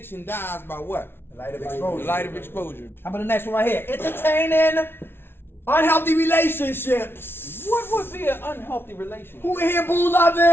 dies by what? The light of exposure. The light of exposure. How about the next one right here? Entertaining unhealthy relationships. What would be an unhealthy relationship? Who in here boo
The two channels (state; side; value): late; right; 0.11 ms